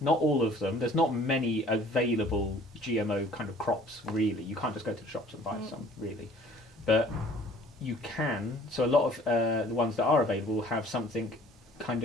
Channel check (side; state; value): both; normal; correlation 0.53